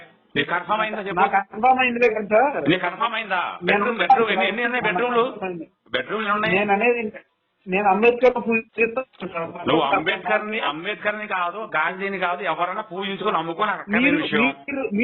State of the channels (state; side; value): identical; both; correlation 1.00